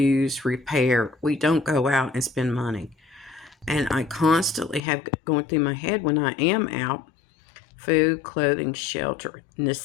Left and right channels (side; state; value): right; drops out; at 4.8 s